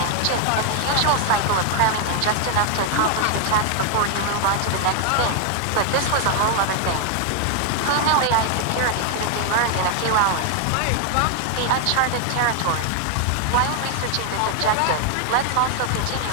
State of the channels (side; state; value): both; different; correlation 0.00